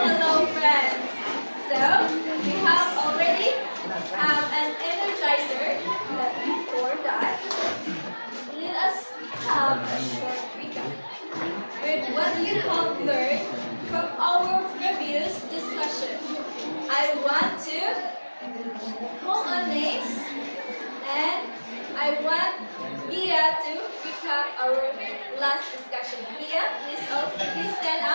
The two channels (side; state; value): both; inverted; correlation -1.00